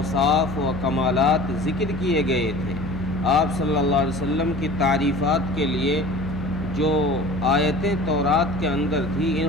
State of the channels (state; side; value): noise; left; hum, 10 dB below the sound